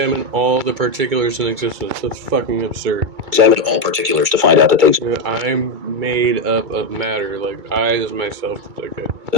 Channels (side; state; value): left; late; 2.3 ms